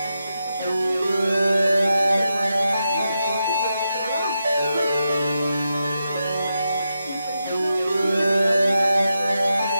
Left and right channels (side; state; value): both; inverted; correlation -0.87